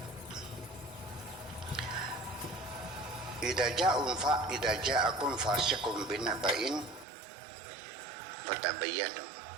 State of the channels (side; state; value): left; drops out; at 7.1 s